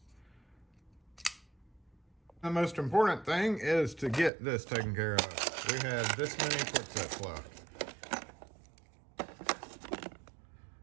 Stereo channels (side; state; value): left; drops out; at 4.3 s